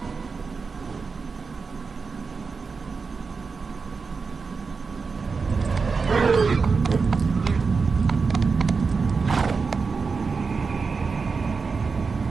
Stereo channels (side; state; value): left; quieter; 4.8 dB